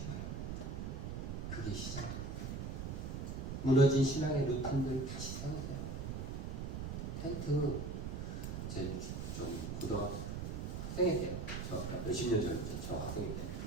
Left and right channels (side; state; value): right; noise; rumble, 4 dB below the sound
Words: 바랍니다. 그게 시작입니다. 무너진 신앙의 루틴들 다시 세우세요. 텐트 제 좀 고등학교 학생회 때요. 저 몇십 년 전이죠. 저 학생회 때.